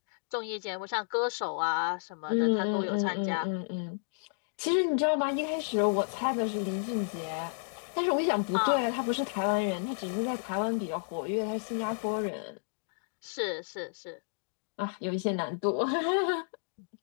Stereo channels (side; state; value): right; silent; digital silence